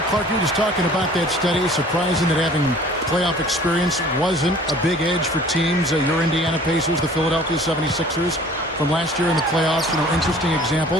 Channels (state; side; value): normal; both; correlation 0.49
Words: Clark, you were just talking about that study. Surprising that having playoff experience wasn't a big edge for teams. Your Indiana Pacers, the Philadelphia 76ers from last year in the playoffs. Interesting